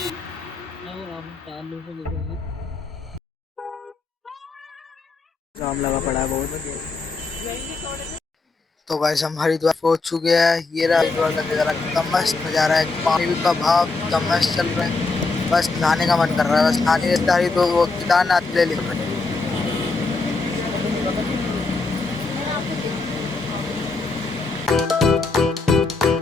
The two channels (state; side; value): quieter; right; 3.8 dB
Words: जाम लगा पड़ा है बहुत। तो गाइस हम हरिद्वार पहुंच चुके हैं। ये रहा हरिद्वार का नजारा, कितना मस्त नजारा है। पानी का भाव कितना मस्त चल रहा है। बस नहाने का मन कर रहा है। बस नहाने तो वो केदारनाथ ले ले।